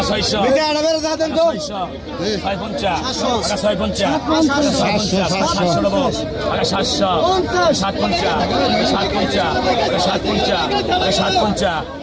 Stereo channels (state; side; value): identical; both; correlation 1.00